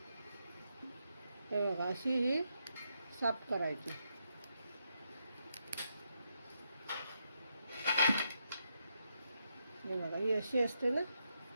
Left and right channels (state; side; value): inverted; both; correlation -0.82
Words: हे बघा, अशी ही साफ करायची. हे बघा, ही अशी असते ना,